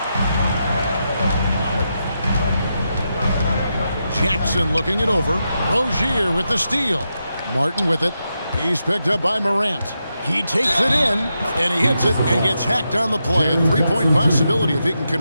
Jackson looking it over. Rozier with the steal. Martin with it. He's picked up by Morant. He takes it in, and he hits it and gets hacked on the play. A three-point possibility if he can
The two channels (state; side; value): inverted; both; correlation -0.86